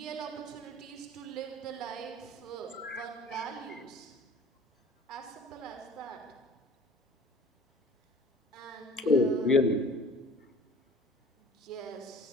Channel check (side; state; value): both; normal; correlation 0.46